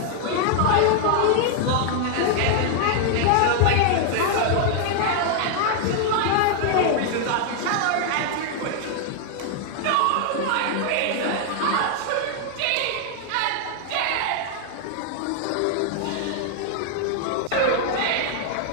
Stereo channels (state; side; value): different; both; correlation 0.00